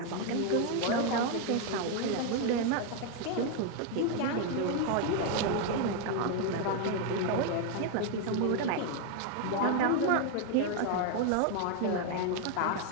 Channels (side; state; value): both; different; correlation 0.01